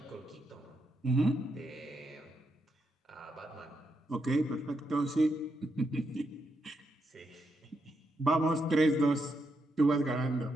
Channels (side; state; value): both; normal; correlation 0.82